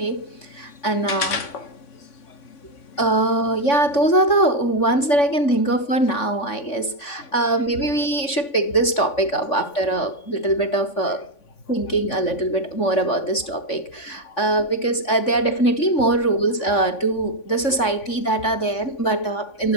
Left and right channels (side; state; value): right; late; 3.5 ms